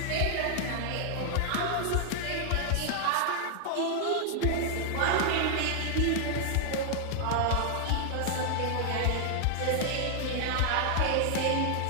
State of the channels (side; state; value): both; different; correlation 0.00